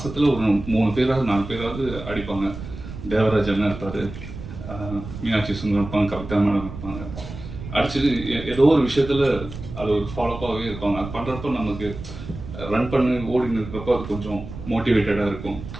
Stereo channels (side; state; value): right; noise; rumble, 11 dB below the sound